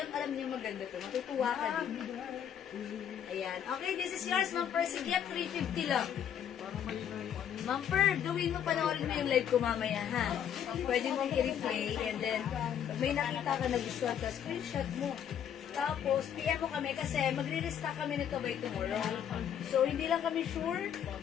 alam niyo maganda to. Matutuwa ka din. Ayan. Okay, this is yours, Ma'am Percy Gift. 350 lang. Ma'am Per, gawin mo, panoorin mo yung live ko mamaya, ha? Pwede mong i-replay and then pag may nakita ka na gustuhan ka, screenshot mo. Tapos, PM mo kami kasi magre-restock kami nito by tomorrow. So, hindi lang kami sure.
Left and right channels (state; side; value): quieter; right; 9.1 dB